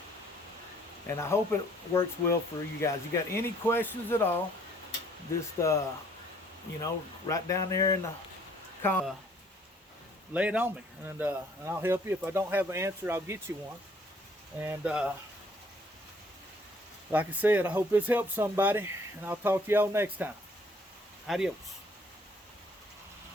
And I hope it works well for you guys. You got any questions at all, just, you know, right down there in the comments, lay it on me, and I'll help you. If I don't have an answer, I'll get you one. And like I said, I hope this helps somebody, and I'll talk to y'all next time. Adios.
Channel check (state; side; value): normal; both; correlation 0.61